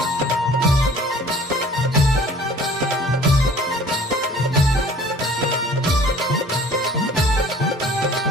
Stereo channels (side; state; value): both; normal; correlation 0.50